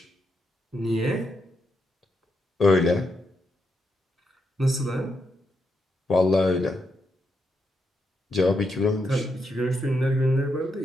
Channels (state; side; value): normal; both; correlation 0.82